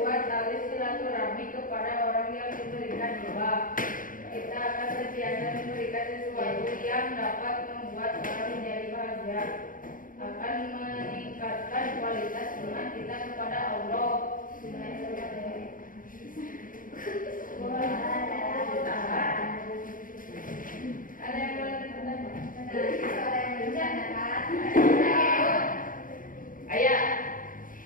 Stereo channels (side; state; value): right; late; 0.40 ms